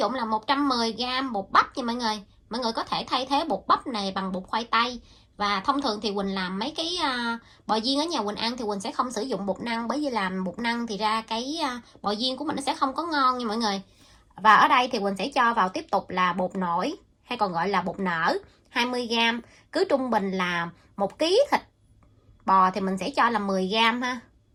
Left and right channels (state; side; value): identical; both; correlation 1.00